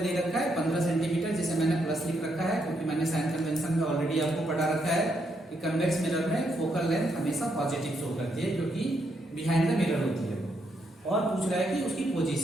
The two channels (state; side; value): normal; both; correlation 0.77